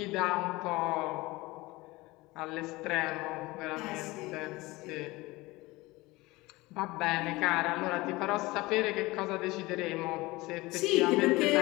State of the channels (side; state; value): right; quieter; 21.1 dB